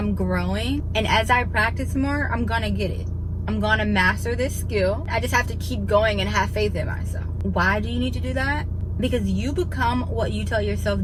growing, and as I practice more, I'm gonna get it. I'm gonna master this skill. I just have to keep going and have faith in myself. Why do you need to do that? Because you become what you tell yourself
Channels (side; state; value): both; identical; correlation 1.00